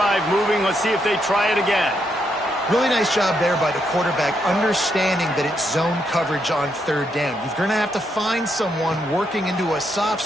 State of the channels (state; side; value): normal; both; correlation 0.79